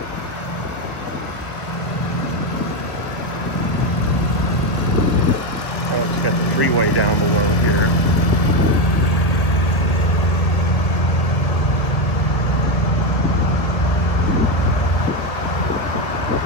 freeway down below here.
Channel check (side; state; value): right; late; 1.0 ms